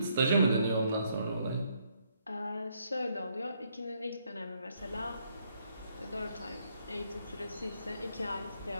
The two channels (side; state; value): both; inverted; correlation -0.72